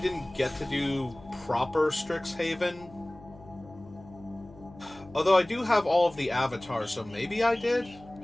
get to do proper Strixhaven. Although I do have all of the avatars, so maybe I did?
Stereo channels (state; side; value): noise; left; hum, 21 dB below the sound